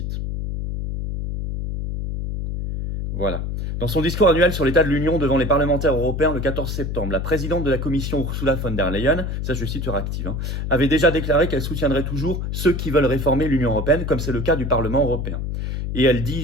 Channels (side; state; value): left; noise; hum, 3 dB below the sound